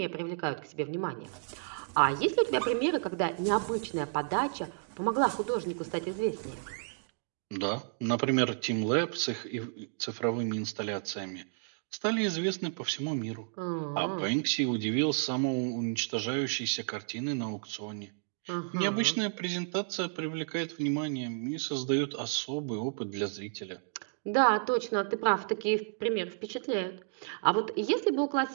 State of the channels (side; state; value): left; silent; digital silence